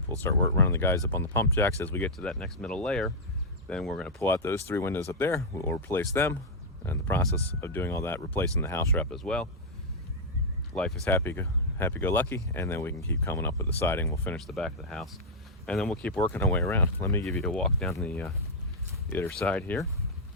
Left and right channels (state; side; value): normal; both; correlation -0.05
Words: We'll start running the guys up on the pump jacks as we get to that next middle layer. Then we're going to pull out those 3 windows up there. We'll replace them. In the process of doing all that, replacing the house wrap as well. Life is happy-go-lucky, and then we can keep coming up with the siding. We'll finish the back of the house, and then we'll keep working our way around. Let me give you a walk down the other side here.